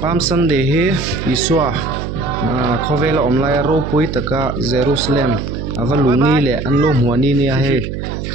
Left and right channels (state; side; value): noise; right; hum, 6 dB below the sound